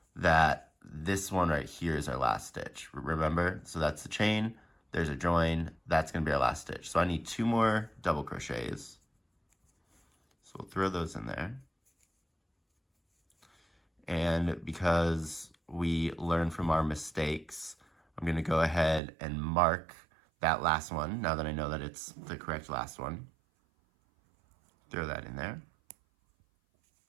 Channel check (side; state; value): left; drops out; at 19.0 s